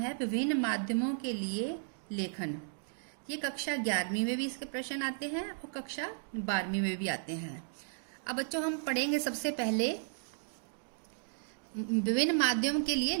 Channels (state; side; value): silent; left; digital silence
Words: विभिन्न माध्यमों के लिए लेखन। ये कक्षा 11वीं में भी इसके प्रश्न आते हैं और कक्षा 12वीं में भी आते हैं। अब बच्चों हम पढ़ेंगे सबसे पहले विभिन्न माध्यमों के लिए